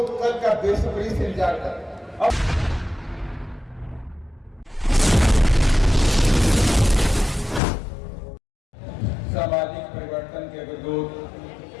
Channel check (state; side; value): drops out; right; at 7.6 s